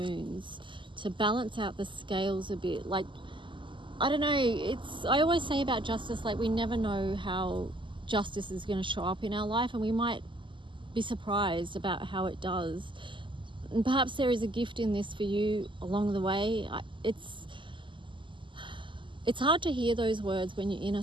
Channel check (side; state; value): left; late; 0.24 ms